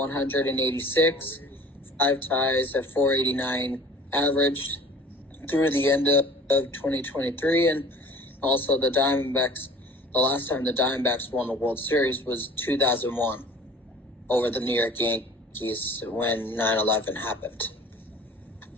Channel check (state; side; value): normal; both; correlation 0.46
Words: 5 ties at 489 average through the end of 2023. And also the Diamondbacks, the last time the Diamondbacks won the World Series was 2001 over the New York Yankees when 9/11 happened.